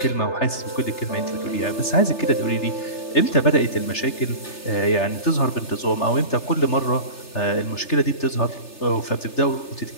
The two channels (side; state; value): right; late; 3.3 ms